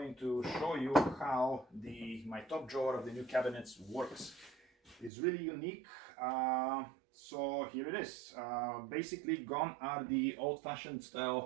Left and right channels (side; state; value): left; drops out; at 5.1 s